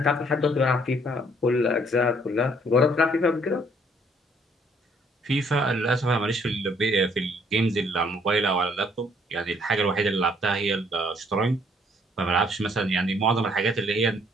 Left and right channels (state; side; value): normal; both; correlation 0.64